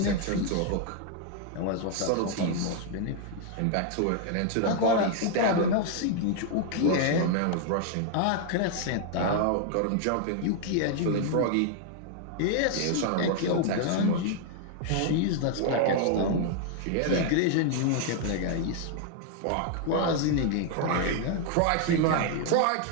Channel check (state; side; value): different; both; correlation 0.00